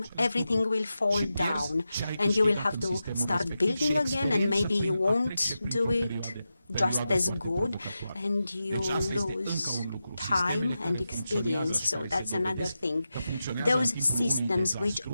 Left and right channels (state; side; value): inverted; both; correlation -0.91